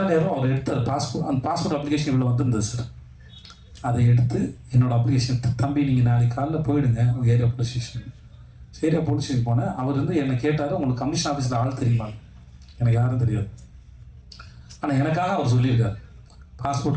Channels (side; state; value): both; identical; correlation 1.00